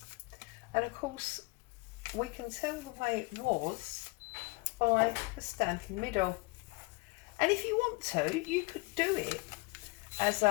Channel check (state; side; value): quieter; right; 26.7 dB